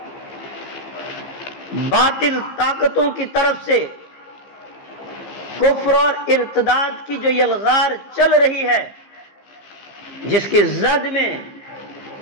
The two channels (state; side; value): late; right; 15 ms